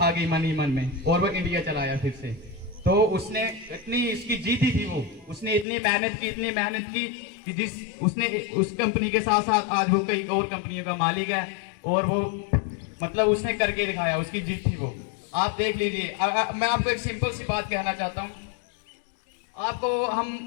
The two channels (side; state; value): right; drops out; at 5.7 s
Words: गई मन ही मन में और वो इंडिया चला आया फिर से। तो उसने इतनी इसकी जीती थी, उसने इतनी मेहनत की कि जिस उसने उस कंपनी के साथ साथ आज वो कई और कंपनियों का मालिक है और वो मतलब उसने करके दिखाया, उसकी जीत थी वो। आप देख लीजिए, मैं आपको एक सिंपल सी बात कहना चाहता हूँ। आपको